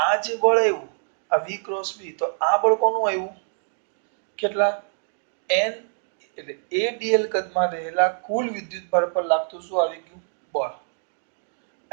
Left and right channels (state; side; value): silent; left; digital silence